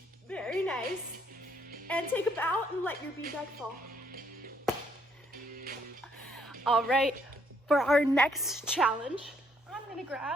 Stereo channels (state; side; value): normal; both; correlation 0.70